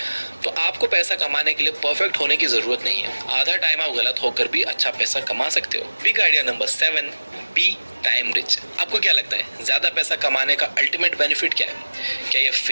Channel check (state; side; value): inverted; both; correlation -1.00